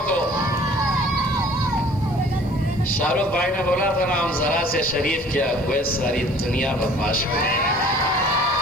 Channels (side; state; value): right; noise; hiss, 30 dB below the sound